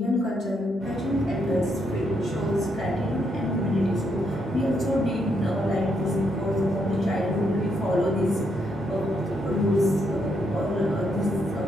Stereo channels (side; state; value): both; normal; correlation 0.77